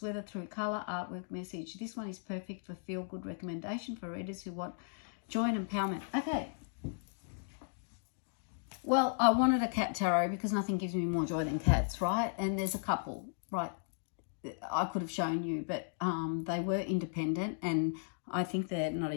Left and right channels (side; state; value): right; silent; digital silence